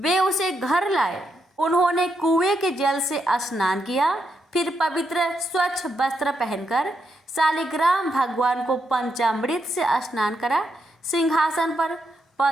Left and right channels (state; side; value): normal; both; correlation 0.81